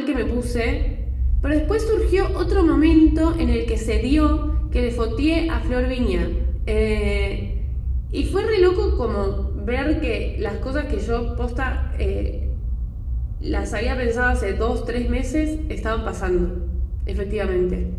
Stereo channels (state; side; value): identical; both; correlation 1.00